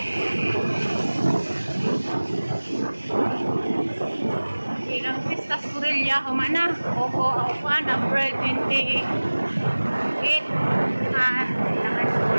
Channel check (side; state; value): both; inverted; correlation -1.00